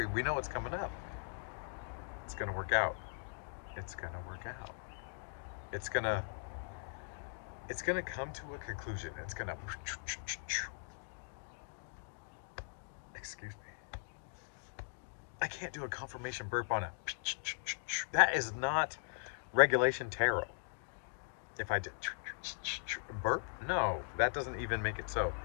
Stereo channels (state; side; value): silent; right; digital silence